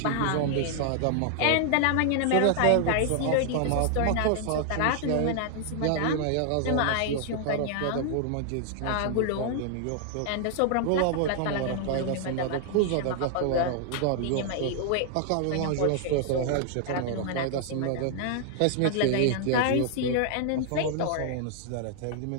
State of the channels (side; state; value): both; different; correlation 0.00